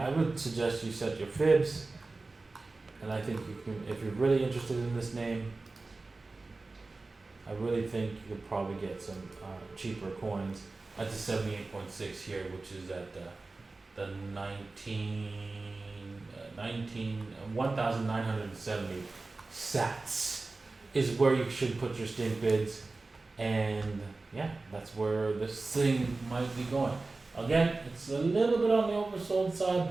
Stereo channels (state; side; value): quieter; left; 3.5 dB